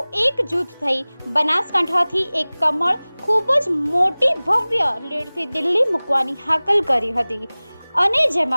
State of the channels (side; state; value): both; inverted; correlation -1.00